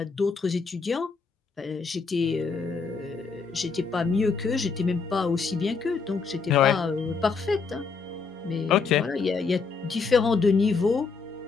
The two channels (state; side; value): quieter; right; 4.9 dB